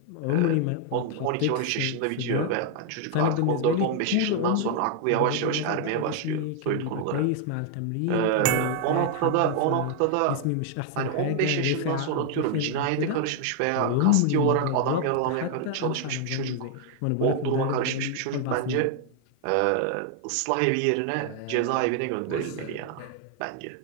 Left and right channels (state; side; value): different; both; correlation 0.00